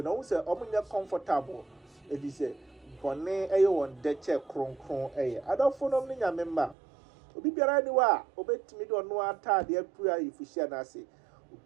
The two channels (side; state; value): left; drops out; at 6.8 s